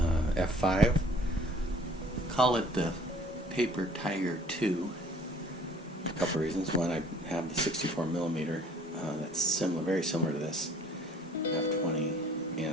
F5. Call it the Paper Tiger 2. A couple reasons. One, I have the 64mm that's similar, very similar to this F20,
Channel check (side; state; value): both; normal; correlation 0.54